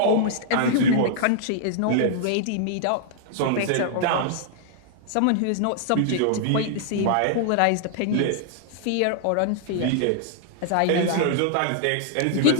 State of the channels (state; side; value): different; both; correlation -0.01